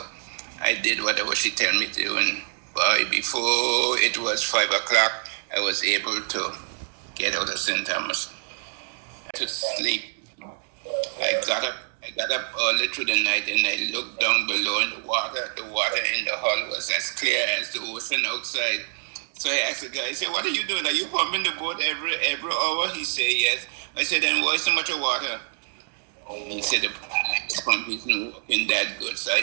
I did whatever she told me to, and before it was 5 o'clock, I was able to get out of St. Thomas to sleep. I got up early through the night, and I looked down below in the water. The water in the hull was as clear as the ocean outside. So I asked the guy, I said, "What are you doing? Are you pumping the boat every hour?" He said, "Yes." I said, "Then why so much of water?" He said, "The pump isn't working that good." So I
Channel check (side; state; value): left; silent; digital silence